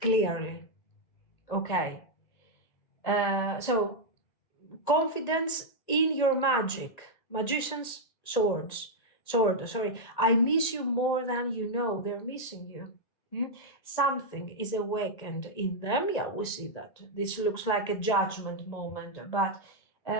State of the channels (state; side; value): late; right; 1.8 ms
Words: Clearly. Okay. So, confidence in your magic. Magician's sword, sorry. I miss you more than you know. They're missing you. Something is awakened in them. Yeah, we see that. This looks like a judgment moment, but